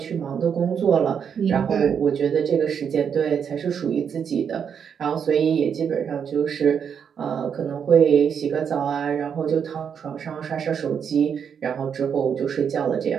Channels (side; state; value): left; quieter; 7.4 dB